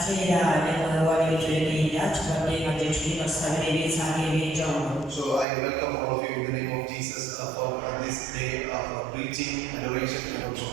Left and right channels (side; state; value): left; drops out; at 5.5 s